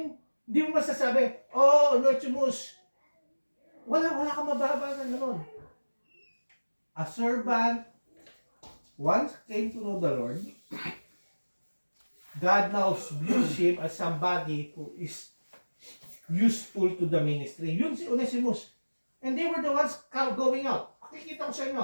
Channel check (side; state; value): both; inverted; correlation -1.00